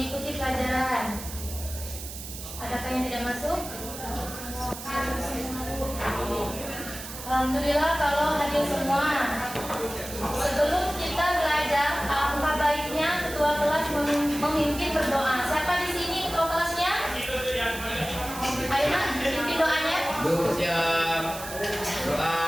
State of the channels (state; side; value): noise; right; hiss, 11 dB below the sound